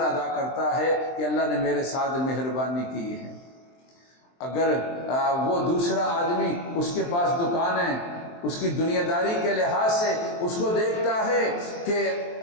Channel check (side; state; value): right; late; 23 ms